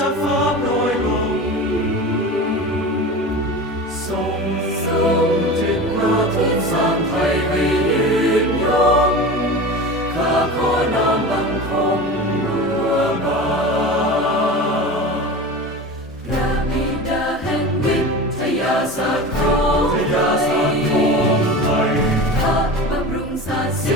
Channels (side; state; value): both; normal; correlation 0.31